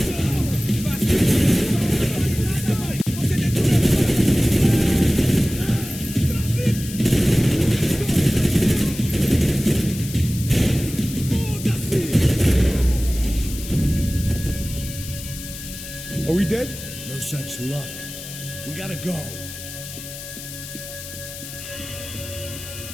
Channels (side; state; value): left; noise; hiss, 12 dB below the sound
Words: Are we dead? No such luck. We gotta go.